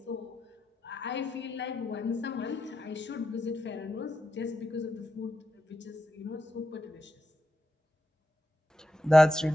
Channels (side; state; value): both; normal; correlation 0.86